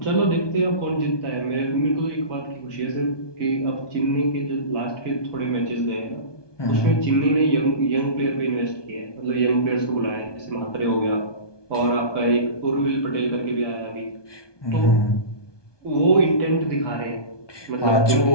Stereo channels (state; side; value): late; right; 1.2 ms